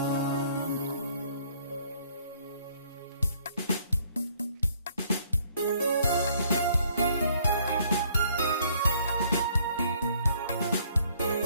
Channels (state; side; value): inverted; both; correlation -0.63